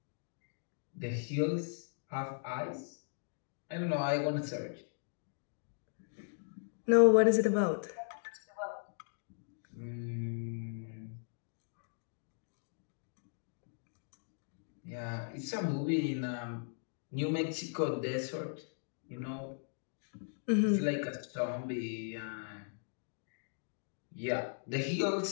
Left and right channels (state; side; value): silent; right; digital silence